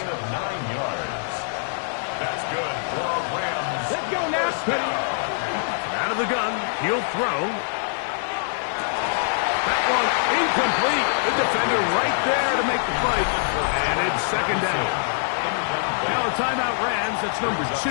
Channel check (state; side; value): silent; right; digital silence